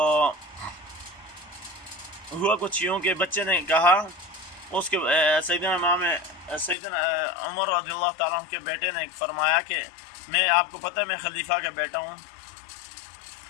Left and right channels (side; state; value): right; drops out; at 6.8 s